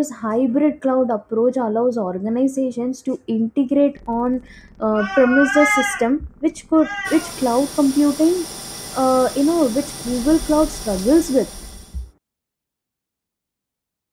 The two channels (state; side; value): identical; both; correlation 1.00